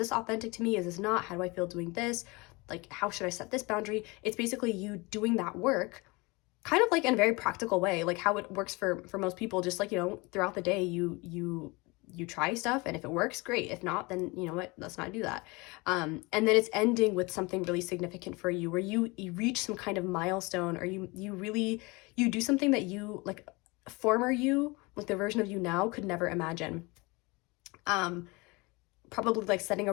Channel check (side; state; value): right; quieter; 25.6 dB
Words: authentic to me? Is this not? How do I feel doing this? Like, how should I set this boundary? It's basically you doing that work kind of like in a very practical way, like how it works for most people. Just like, you know, throughout the day, you try stuff, and if it works, great. If not, then you know what, let's not do that. And then it's ending with something really significant for you, where you reach some kind of milestone, or you do something that you, like, former you, like the version of you now, could never imagine. Probably like setting